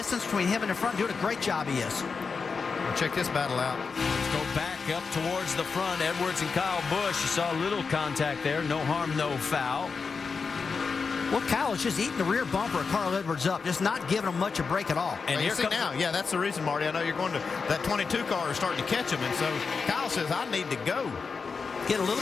between him and the front. Doing a great job, he is. Well, check this battle out. Let's go back up towards the front. Edwards and Kyle Busch. You saw a little contact there. No harm, no foul. Well, Kyle is just eating the rear bumper of Carl Edwards up, just not giving him much a break at all. And here comes now. Yeah, that's the reason, Marty. I know you're going to that 22 car is starting to catch him, and so Kyle says, I need to go. Get a little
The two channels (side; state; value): right; quieter; 5.0 dB